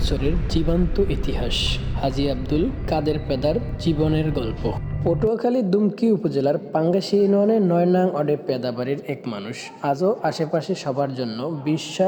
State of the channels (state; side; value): identical; both; correlation 1.00